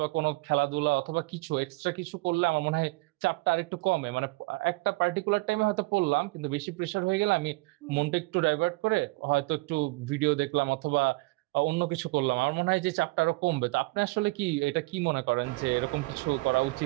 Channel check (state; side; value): quieter; left; 23.5 dB